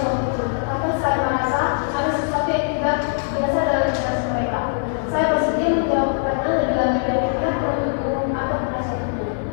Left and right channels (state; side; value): silent; right; digital silence